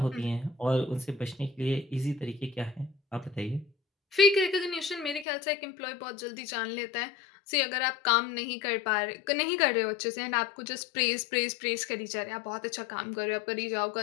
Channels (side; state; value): right; drops out; at 5.2 s